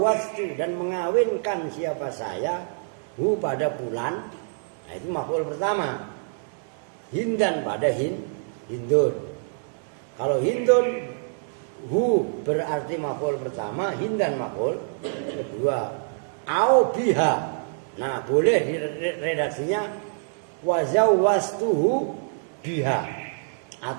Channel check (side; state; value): left; silent; 58 dB below the other